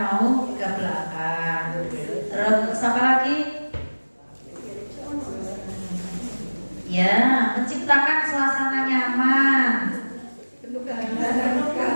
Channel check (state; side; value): inverted; both; correlation -1.00